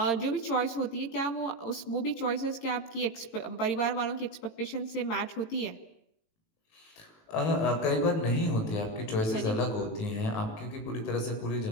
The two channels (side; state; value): right; late; 18 ms